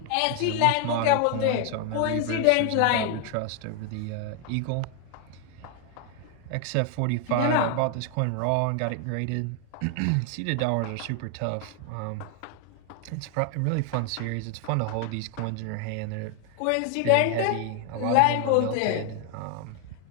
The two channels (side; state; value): both; different; correlation 0.01